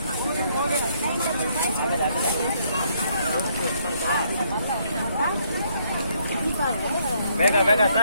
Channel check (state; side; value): inverted; both; correlation -0.70